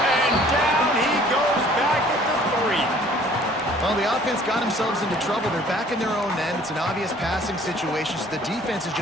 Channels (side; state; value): both; normal; correlation 0.54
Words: down he goes back at the 3. Well, the offense got themselves into trouble. They're back in their own end. It's an obvious passing situation. So the defense is